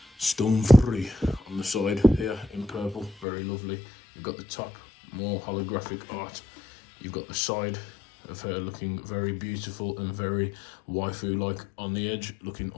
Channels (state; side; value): drops out; right; at 3.2 s